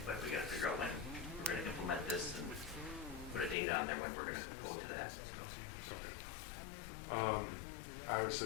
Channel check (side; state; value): right; drops out; at 3.6 s